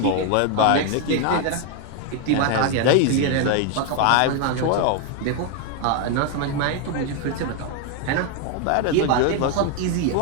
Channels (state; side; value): different; both; correlation 0.01